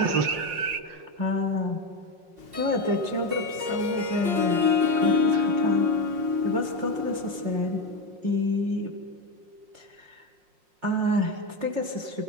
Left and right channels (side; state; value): left; late; 5.6 ms